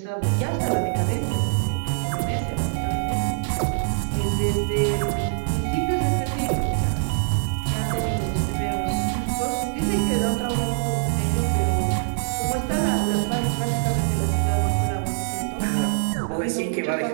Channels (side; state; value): left; silent; 63 dB below the other